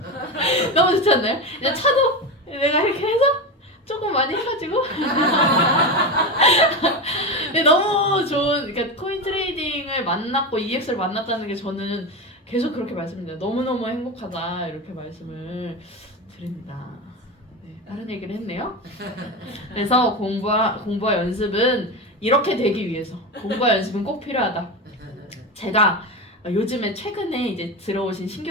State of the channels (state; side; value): normal; both; correlation 0.19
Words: 너무 좋지 않나요? 이제 차도 내가 이렇게 해서 조금 많이 해가지고 너무 좋은 그러니까 코인 트레이딩을 만났고 EX를 만났다는 게 저는 계속 그렇게 말씀드려요. 너무너무 행복하다 이렇게 말씀을 드립니다. 네, 다른 얘기를 했네요. 그래서 공부와 연습은 이렇게 되기 위해서 공부와 연습은 꼭 필요하다. 제가 요즘에 최근에 이제 들어오신